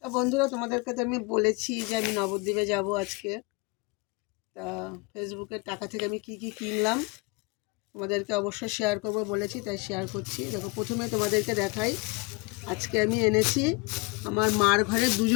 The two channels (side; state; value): right; quieter; 27.1 dB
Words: বন্ধুরা, তোমাদেরকে তো আমি বলেছি যে আমি নবদ্বীপে যাব আজকে। তা ফেসবুকের টাকা থেকে আমি কি কি কিনলাম তোমাদেরকে অবশ্যই শেয়ার করবো বলেছি, তাই শেয়ার করছি। দেখো, প্রথমে তোমাদেরকে দেখাই, আজকে আমি এনেছি আমার মার ঘরে